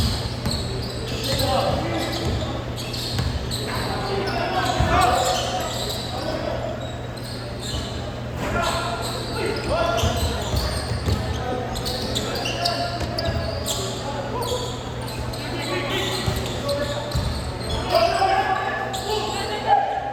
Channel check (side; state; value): both; identical; correlation 1.00